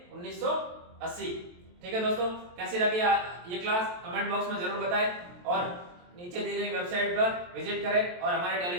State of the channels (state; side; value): late; left; 23 ms